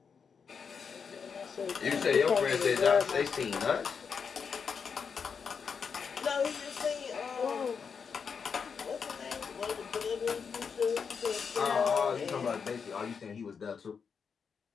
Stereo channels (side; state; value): right; quieter; 6.1 dB